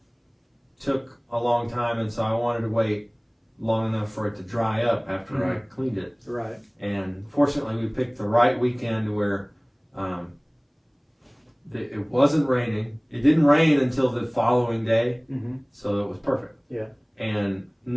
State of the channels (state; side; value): identical; both; correlation 1.00